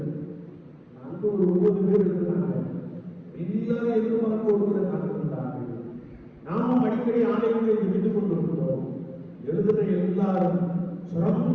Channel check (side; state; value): both; identical; correlation 1.00